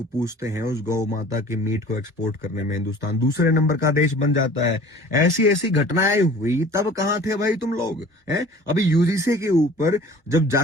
पूछते हैं, उस गौ माता के मीट को एक्सपोर्ट करने में हिंदुस्तान दूसरे नंबर का देश बन जाता है। ऐसी ऐसी घटनाएं हुई तब कहां थे भाई तुम लोग हैं? अभी यूजीसी के ऊपर जब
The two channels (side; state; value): both; normal; correlation 0.46